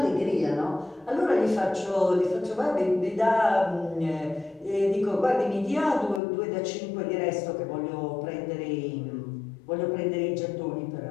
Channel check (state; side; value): drops out; right; at 6.2 s